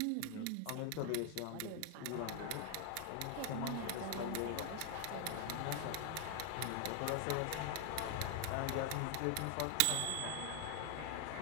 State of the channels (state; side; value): different; both; correlation 0.00